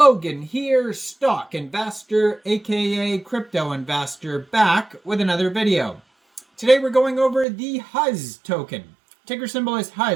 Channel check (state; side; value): drops out; left; at 7.5 s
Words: here, stock investor aka crypto investor, back with another video. Today we're going over the Huzz token. Ticker symbol is